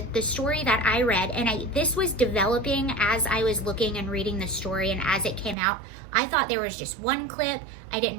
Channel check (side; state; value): left; drops out; at 5.6 s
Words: the story that I read, and this was developing as I was looking and reading the story and as it came out, I thought there was just one clip. I didn't